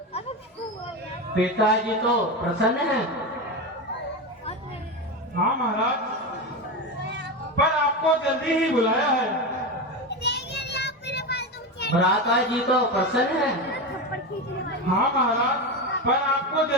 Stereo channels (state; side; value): normal; both; correlation 0.18